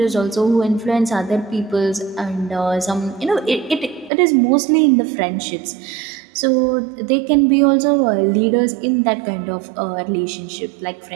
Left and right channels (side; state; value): left; drops out; at 4.1 s